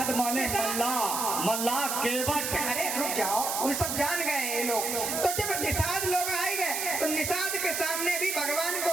माने मल्ला केवट। अरे रुक जाओ, वो सब जान गए ये लोग। तो जब निषाद लोग आए गए तो निषाद के सामने भी भगवान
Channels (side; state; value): right; noise; hiss, 1 dB below the sound